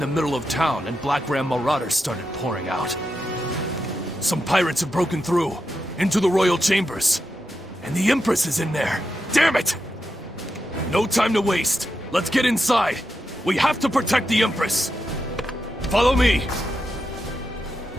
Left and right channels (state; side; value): normal; both; correlation 0.86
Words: the middle of town, and Black Ram marauders started pouring out. Some pirates have broken through, into the royal chambers. And the Empress is in there. Damn it! No time to waste. Let's get inside. We have to protect the Empress. Follow me.